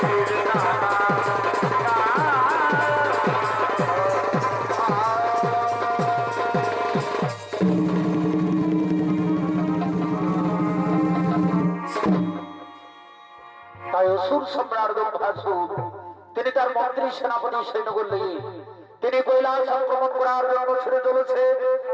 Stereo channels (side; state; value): both; identical; correlation 1.00